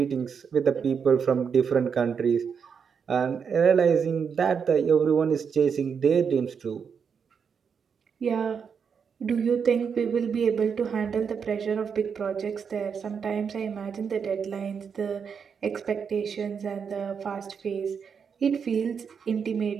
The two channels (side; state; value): left; quieter; 6.5 dB